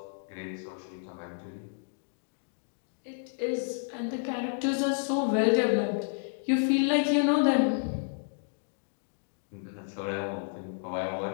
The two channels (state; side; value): silent; right; digital silence